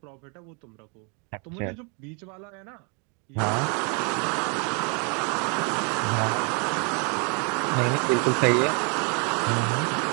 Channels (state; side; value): quieter; left; 35.9 dB